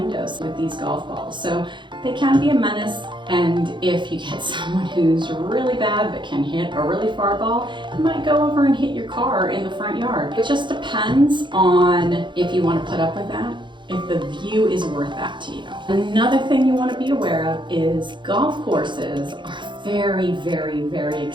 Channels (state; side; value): late; left; 0.23 ms